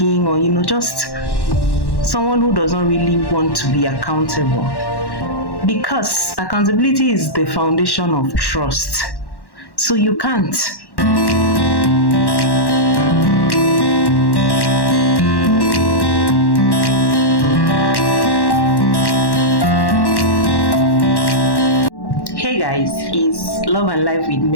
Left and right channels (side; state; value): right; late; 1.1 ms